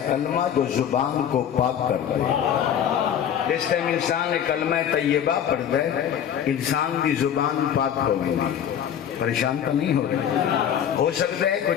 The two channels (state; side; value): quieter; right; 9.2 dB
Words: کلمہ جو زبان کو پاک کر دے. جس ٹائم انسان نے کلمہ طیبہ پڑھ دے انسان کی زبان پاک ہو گئی. پریشان تو نہیں ہو رہے؟ ہو سکتا ہے کوئی